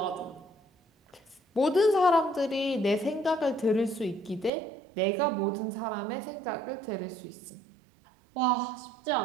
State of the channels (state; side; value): drops out; left; at 4.5 s